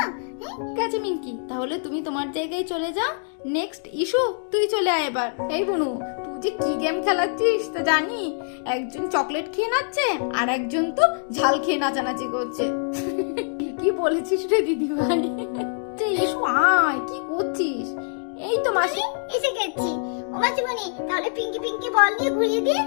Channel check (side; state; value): right; silent; 59 dB below the other